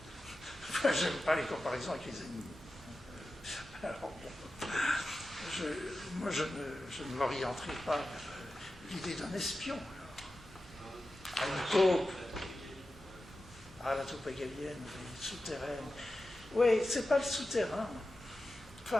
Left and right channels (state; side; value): normal; both; correlation 0.93